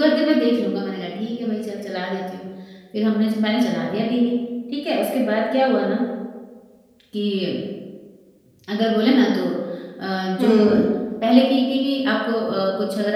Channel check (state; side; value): identical; both; correlation 1.00